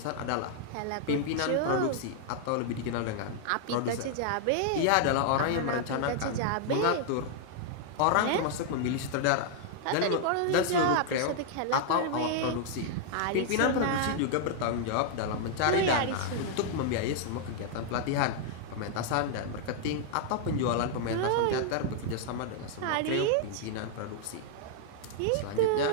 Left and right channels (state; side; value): different; both; correlation -0.01